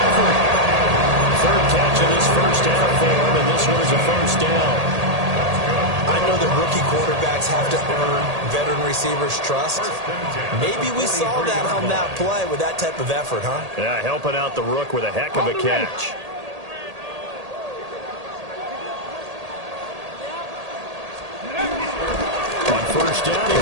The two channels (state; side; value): late; left; 1.8 ms